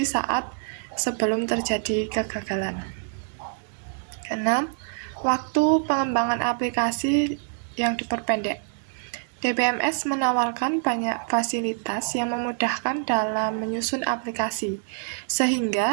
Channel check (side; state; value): left; silent; 61 dB below the other